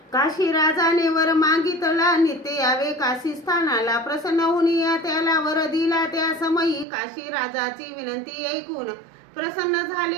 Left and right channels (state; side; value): drops out; left; at 6.9 s